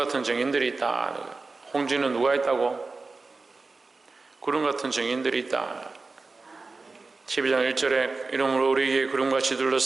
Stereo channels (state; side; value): quieter; left; 3.8 dB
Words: 증인들이 있다. 홍지는 누가 있다고? 구름 같은 증인들이 있다. 12장 1절에 이러므로 우리에게 구름같이